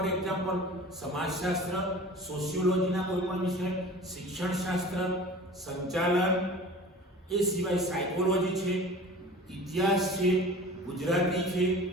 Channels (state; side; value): normal; both; correlation 0.40